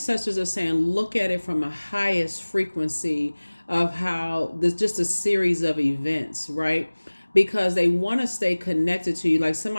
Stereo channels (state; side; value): inverted; both; correlation -1.00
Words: are saying, look at it from a highest frequency of how there's just a series of events, right? Because they want to stay connected to you. Like